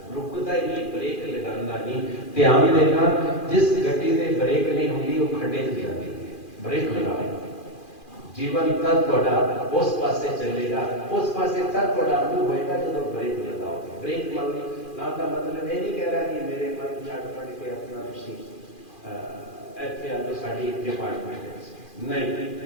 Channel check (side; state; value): right; late; 2.4 ms